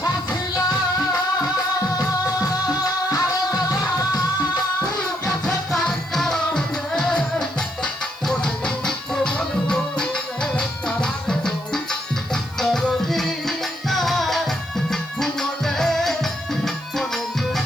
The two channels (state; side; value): noise; right; hiss, 25 dB below the sound